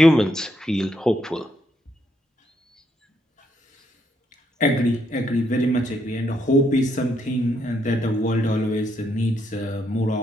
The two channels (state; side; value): normal; both; correlation 0.75